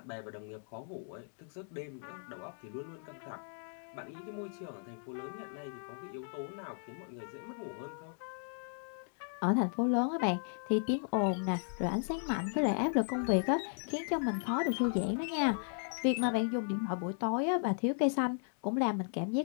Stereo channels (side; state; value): right; silent; 54 dB below the other